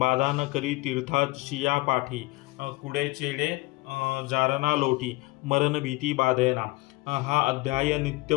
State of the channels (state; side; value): quieter; right; 22.1 dB